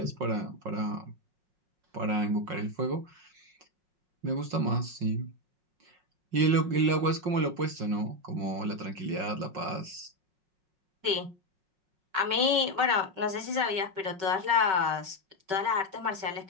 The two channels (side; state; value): left; late; 5.3 ms